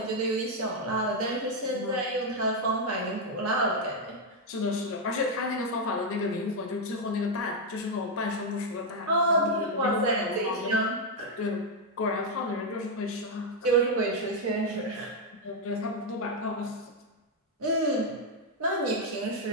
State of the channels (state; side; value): normal; both; correlation 0.01